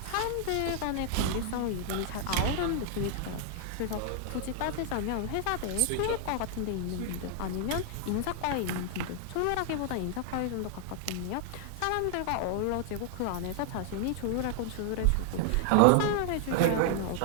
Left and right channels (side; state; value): both; different; correlation 0.00